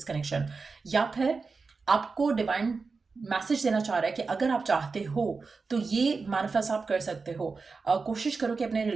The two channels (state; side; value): quieter; left; 4.5 dB